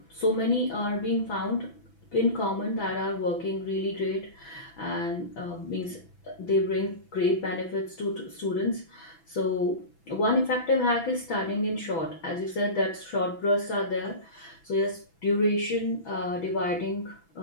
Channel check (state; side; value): late; right; 6.0 ms